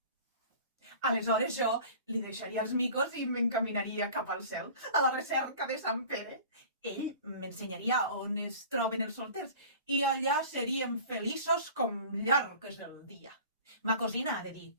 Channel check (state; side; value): inverted; both; correlation -0.42